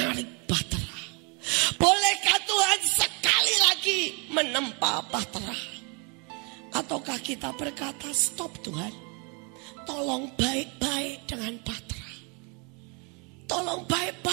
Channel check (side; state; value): left; quieter; 34.0 dB